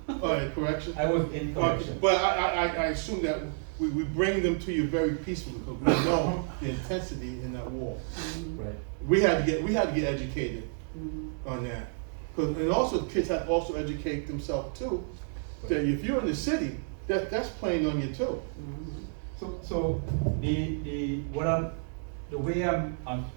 corrections. I was in corrections. But I assume that we bring them to you very peacefully because we know the intensity in that war. Right. We had to get educated on that. and also kids have to also educate themselves too, that if you're in the city, that's playing on you too. So the way I'm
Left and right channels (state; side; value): silent; left; 58 dB below the other